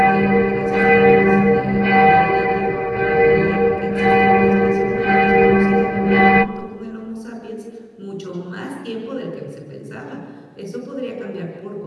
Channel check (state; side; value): identical; both; correlation 1.00